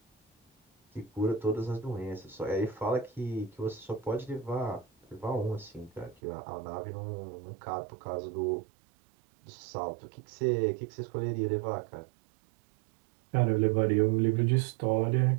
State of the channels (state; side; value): drops out; left; at 6.2 s